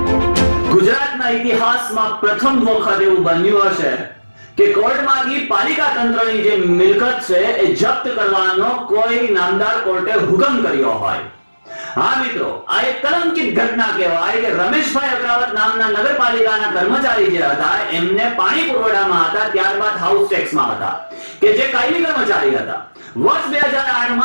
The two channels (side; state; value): both; inverted; correlation -1.00